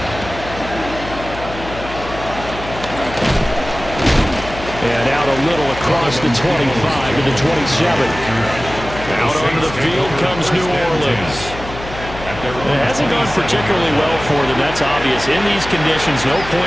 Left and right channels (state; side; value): noise; left; hum, 12 dB below the sound